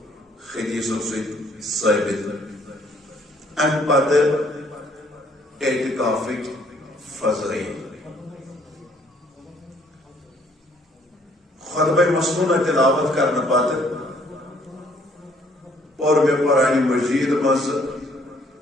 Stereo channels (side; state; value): both; normal; correlation 0.63